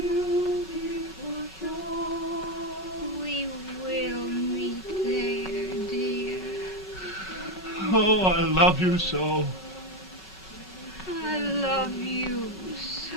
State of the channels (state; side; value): normal; both; correlation 0.11